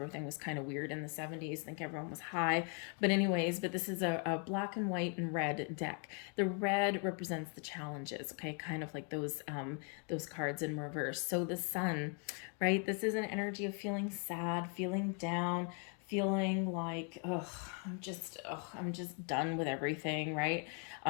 was kind of weird in the 70s. I think everyone was high. But this is a black and white and red deck. The red represents the challenges, okay? Kind of like those cards in reverse. So the Sun, right? This is an energy of feeling sad, feeling down, feeling like, I'm just done with everything, right?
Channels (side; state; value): right; quieter; 40.0 dB